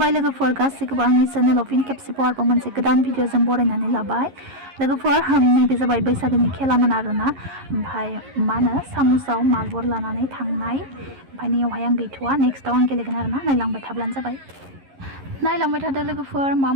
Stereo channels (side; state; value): left; late; 11 ms